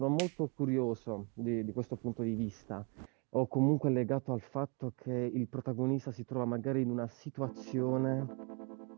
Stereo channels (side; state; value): left; quieter; 33.4 dB